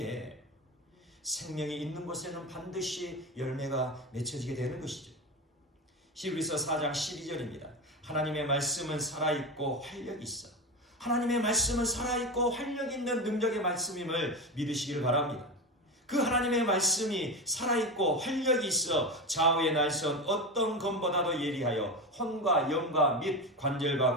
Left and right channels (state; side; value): normal; both; correlation 0.21